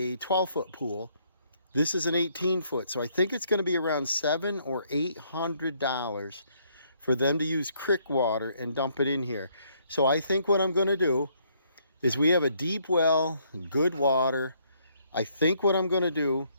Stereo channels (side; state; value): both; inverted; correlation -0.69